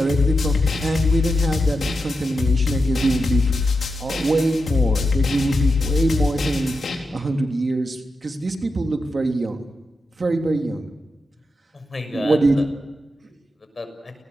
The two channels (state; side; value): normal; both; correlation 0.88